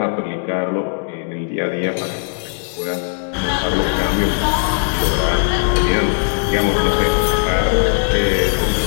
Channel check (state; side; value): silent; right; digital silence